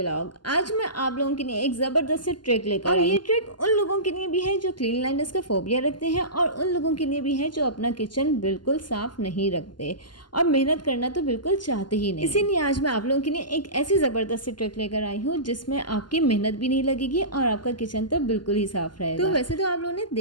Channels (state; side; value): late; right; 0.71 ms